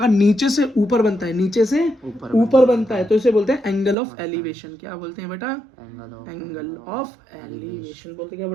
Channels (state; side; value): drops out; left; at 4.0 s